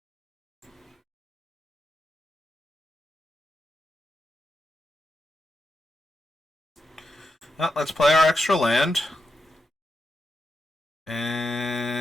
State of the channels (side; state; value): both; normal; correlation 0.86